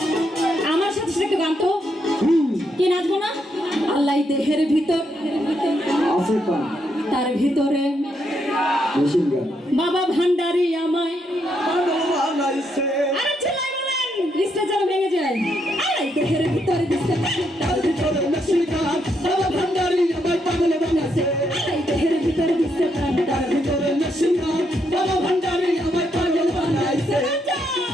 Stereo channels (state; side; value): normal; both; correlation 0.78